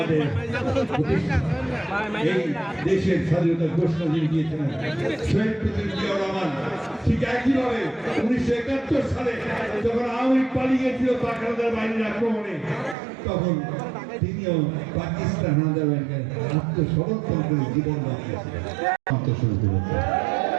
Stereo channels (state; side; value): drops out; left; at 13.0 s